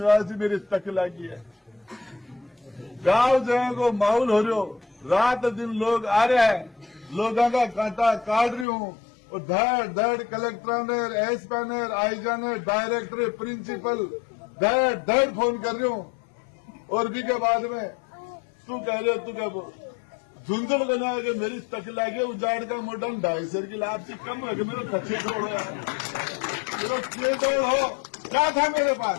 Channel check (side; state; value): right; drops out; at 8.7 s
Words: जी मेरी तक लगी है, गांव जगह को माहौल हो रहे हो, रात दिन लोग आ रहे हैं, लोगों का कांटा काट रही हूं, और धड़ धड़ कलेक्टर ने, एसपी ने, आईजा ने, डायरेक्टर, प्रिंसिपल धड़ धड़ फोन कर रही हूं। और भी के बाद में तू कह रहे हो, तू क्या बोल झुंझुन बना के मेरी तक लागे, उजाड़ का मोटा 250 की लाभ कम है कि मेरे कच्चे तोड़ यार, मेरा के तोड़ हो क्या था मेरे